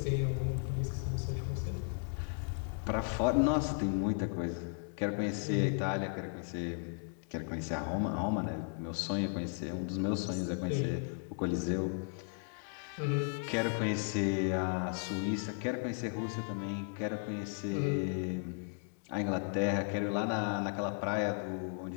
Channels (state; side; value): silent; right; 54 dB below the other